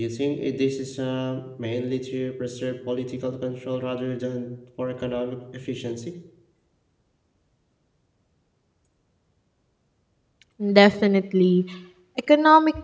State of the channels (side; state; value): both; identical; correlation 1.00